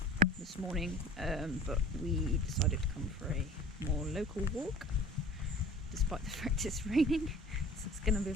this morning, but we decided to come for a more local walk despite the fact it's raining, so it's going to be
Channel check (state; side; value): normal; both; correlation 0.45